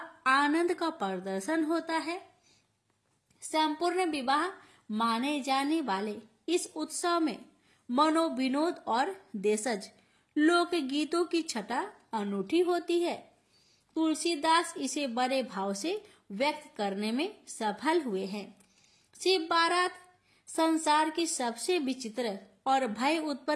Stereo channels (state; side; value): identical; both; correlation 1.00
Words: आनंद का प्रदर्शन होता है। संपूर्ण विवाह माने जाने वाले इस उत्सव में मनोविनोद और देशज लोक गीतों की छटा अनूठी होती है। तुलसीदास इसे बड़े भाव से व्यक्त करने में सफल हुए हैं। शिव बारात संसार की सबसे विचित्र और भय